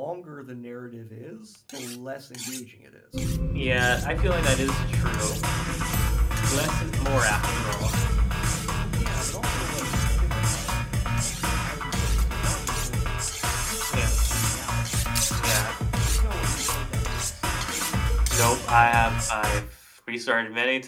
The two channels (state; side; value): identical; both; correlation 1.00